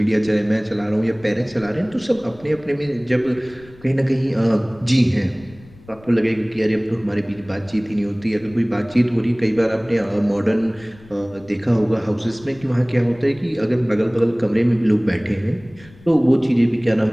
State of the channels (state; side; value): noise; left; rumble, 23 dB below the sound